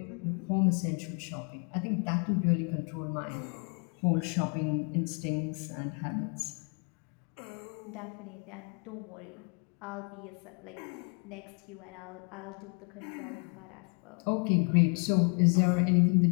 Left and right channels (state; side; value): quieter; right; 37.5 dB